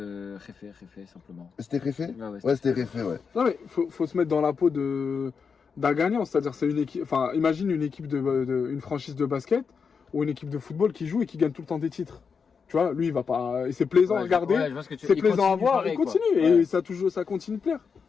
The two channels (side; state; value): right; quieter; 5.8 dB